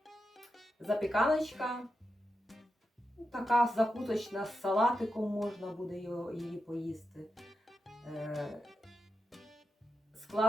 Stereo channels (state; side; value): normal; both; correlation 0.88